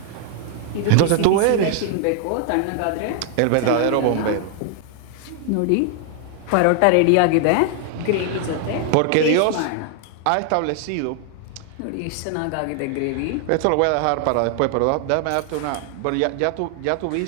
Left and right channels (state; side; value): different; both; correlation 0.00